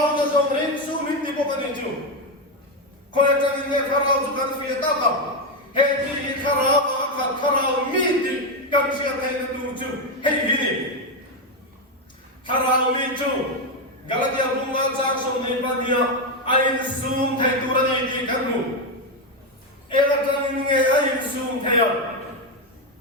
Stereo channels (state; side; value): normal; both; correlation 0.08